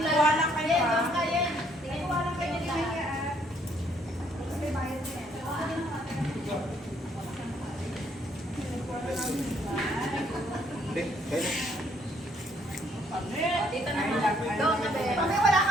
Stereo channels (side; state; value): both; normal; correlation 0.68